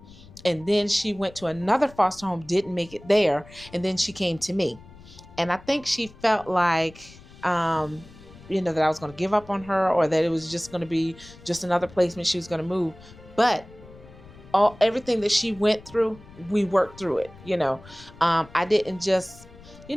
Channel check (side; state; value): left; noise; rumble, 21 dB below the sound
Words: and then she went to another foster home, didn't make it there, and then she came to me. And I think she felt like that I was going to give up on her, or that it was just going to be just another placement, she was going to move. But everything that she went through, we worked through it. I didn't just,